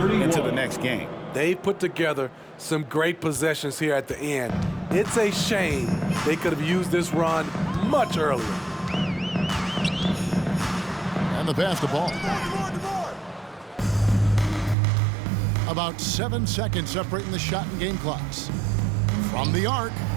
the next game. They put together some great possessions here at the end. It's a shame they could have used this run much earlier. And the pass to ball. About 7 seconds separating the shot and game clocks. From the arc,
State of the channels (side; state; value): left; drops out; at 14.8 s